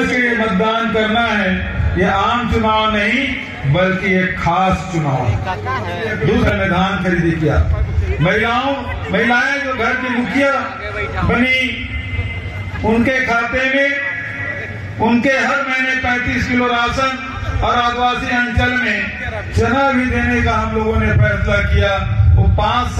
के मतदान करना है। ये आम चुनाव नहीं बल्कि एक खास चुनाव है। दूसरा मैदान खरीदी किया, महिलाएं जो घर की मुखिया बनी, उनके खाते में उनके हर महीने 35 किलो राशन और आदिवासी अंचल में चना भी देने का हम लोगों ने फैसला किया। वो 5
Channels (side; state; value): both; identical; correlation 1.00